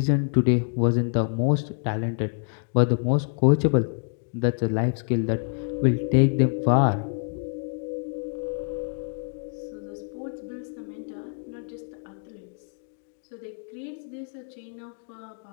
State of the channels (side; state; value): right; silent; 61 dB below the other